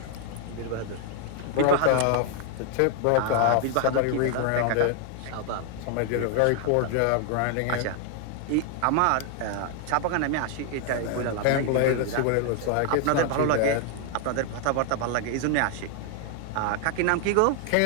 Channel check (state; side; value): different; both; correlation 0.00